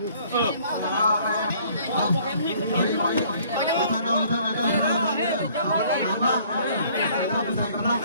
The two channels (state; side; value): inverted; both; correlation -0.58